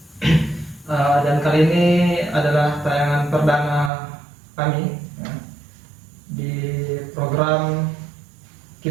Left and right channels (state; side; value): drops out; left; at 3.9 s